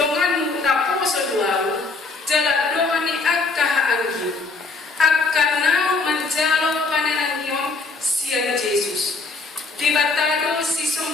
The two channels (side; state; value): right; quieter; 3.9 dB